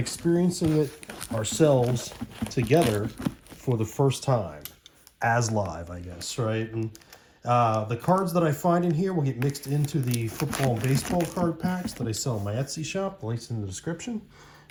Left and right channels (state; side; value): identical; both; correlation 1.00